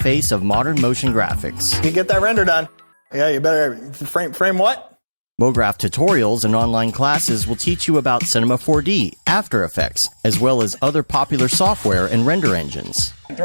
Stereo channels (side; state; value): both; inverted; correlation -1.00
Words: of modern motion graphics. You get that render done. Yeah, you better frame what? Mograph tutorials and online classes will teach you about Cinema 4D, After Effects, as well as other popular software and render engines.